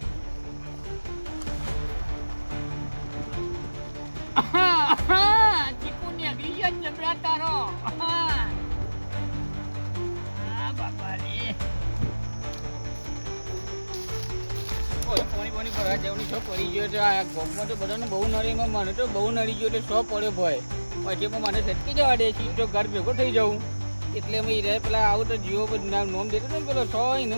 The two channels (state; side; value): inverted; both; correlation -1.00